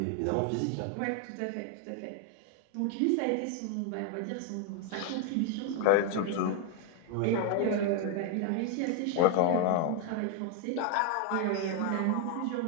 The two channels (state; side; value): different; both; correlation 0.01